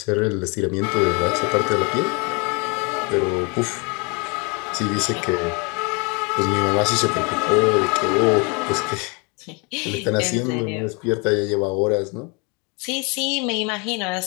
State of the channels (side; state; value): right; quieter; 31.5 dB